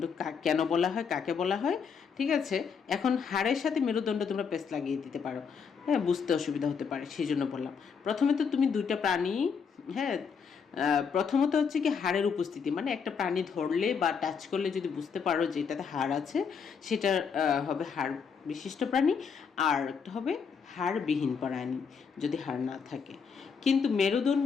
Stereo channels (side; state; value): right; quieter; 6.2 dB